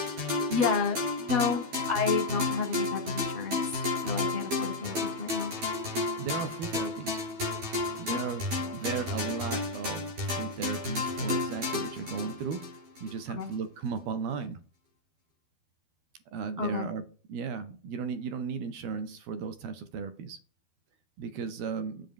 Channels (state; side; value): late; left; 12 ms